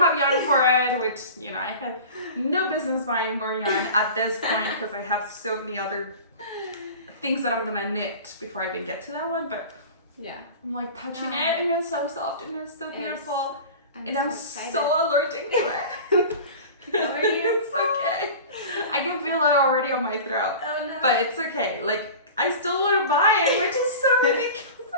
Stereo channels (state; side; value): inverted; both; correlation -0.36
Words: have yarn for it, which, you know, I have no business buying more yarn at this point, because I have so many other things that I'm gonna knit before I even get to that one. But yeah, I'm like touching it, and it's so soft and it's so beautiful, and I'm so allergic to it. It's okay. I can feel it already on my throat. Oh no. But it's okay. Like, I still want to buy it, which is so